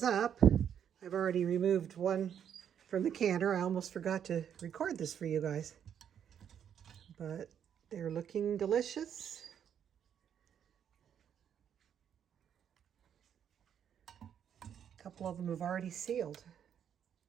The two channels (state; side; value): quieter; left; 8.8 dB